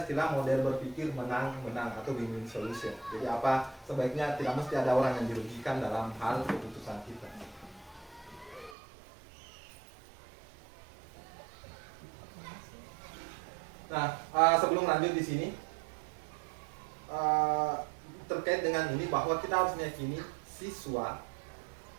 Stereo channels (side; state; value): left; drops out; at 8.8 s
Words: istilah model berpikir menang-menang atau win-win solution. Jadi apa, sebaiknya tidak mesti ada orang yang dirugikan dalam hal keputusan kita. Nah, sebelum lanjut di sini, terkait dengan ini bahwa kita harus meyakini siswa